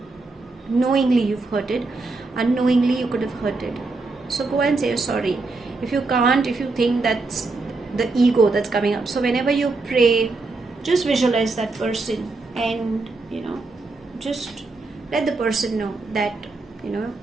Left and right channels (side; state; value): left; quieter; 3.6 dB